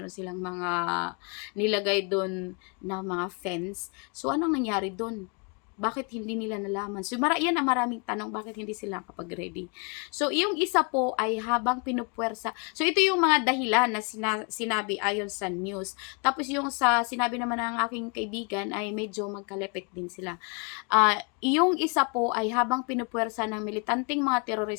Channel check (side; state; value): right; quieter; 35.1 dB